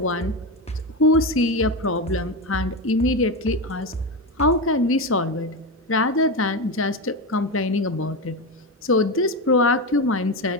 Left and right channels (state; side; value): normal; both; correlation 0.15